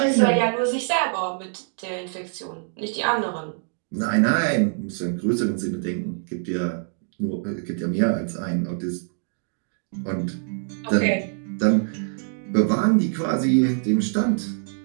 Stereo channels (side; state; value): left; silent; 62 dB below the other